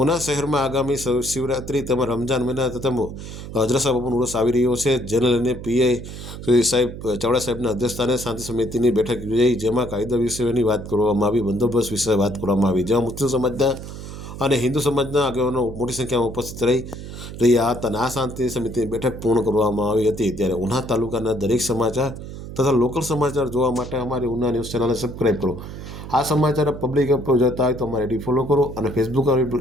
શહેરમાં આગામી શિવરાત્રિ તેમજ રમજાન મહિના તથા હજરત બાપુનો ઉર્સ આવી રહ્યો છે, જેને લઈને પીઆઈ સાહેબ ચાવડા સાહેબના અધ્યક્ષસ્થાને શાંતિ સમિતિની બેઠક યોજાઈ, જેમાં કાયદા વિષયની વાત કરવામાં આવી, બંદોબસ્ત વિશે વાત કરવામાં આવી, જેમાં મુસ્લિમ સમાજના અને હિન્દુ સમાજના આગેવાનો મોટી સંખ્યામાં ઉપસ્થિત રહ્યા હતા અને આ શાંતિ સમિતિની બેઠક પૂર્ણ કરવામાં આવી હતી. ત્યારે ઉના તાલુકાના દરેક સમાચાર તથા લોકલ સમાચાર જોવા માટે અમારી ઉના ન્યૂઝ ચેનલને સબસ્ક્રાઈબ કરો. આ સમાચાર પબ્લિક એપ પર જોતા હોય તો અમારી આઈડી ફોલો કરો અને ફેસબુક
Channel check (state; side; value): noise; right; hum, 11 dB below the sound